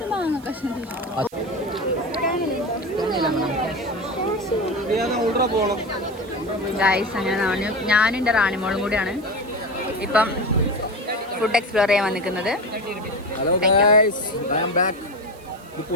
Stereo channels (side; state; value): right; noise; hiss, 25 dB below the sound